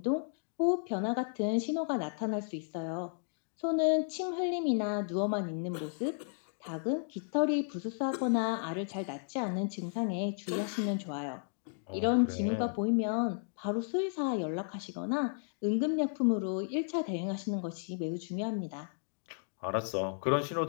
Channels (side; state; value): right; silent; digital silence